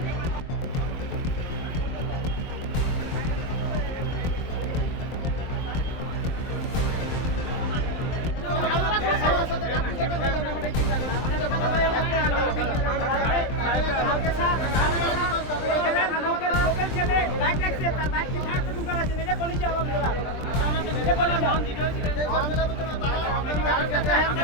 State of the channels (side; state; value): right; late; 23 ms